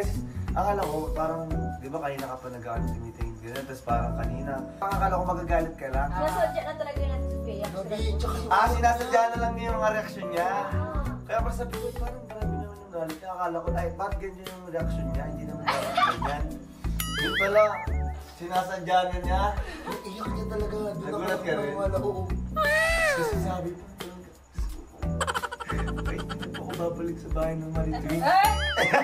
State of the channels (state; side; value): identical; both; correlation 1.00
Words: akala ko parang, di ba kanina ka pa nag-ano, tinitingin ganyan. Tapos parang kanina, akala ko magagalit ka lang. Nasadya na talaga yung Ate Sophia. Gabi, tsaka yung... Sinasadya na lang niya yung mga reaksyon niya. Kaya parang sabi ko, parang marami naman yung galit. Kaya akala ko, ay, bakit ganyan yung reaksyon niya? Hindi naman dapat ganyan. Yun pala, sinasadya na niya. Yung iyak niya talaga. Doon Nagulat ka rin? Oo. Kasi sabi ko, wait, hindi na po ako babalik sa bahay ng Maritwin. Eh!